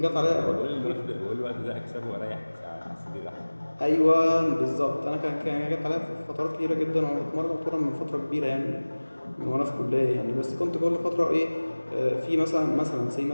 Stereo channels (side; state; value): both; inverted; correlation -1.00